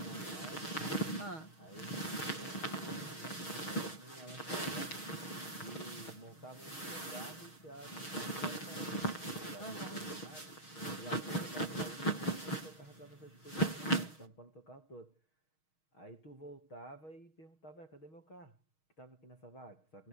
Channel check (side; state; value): right; late; 6.4 ms